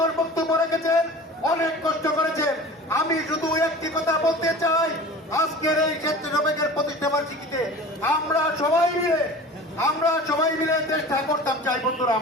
বক্তব্য রেখেছেন, অনেক কষ্ট করেছেন। আমি শুধু একটি কথা বলতে চাই, আজকের এই স্বেচ্ছাসেবকের প্রতিষ্ঠা বার্ষিকীতে আমরা সবাই মিলে চেষ্টা করতাম চাই। বন্ধুরা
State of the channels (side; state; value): both; normal; correlation 0.39